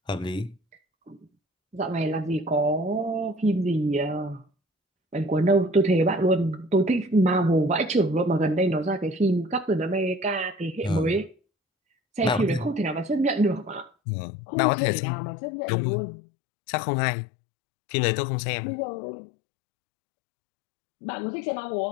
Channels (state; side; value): drops out; right; at 13.9 s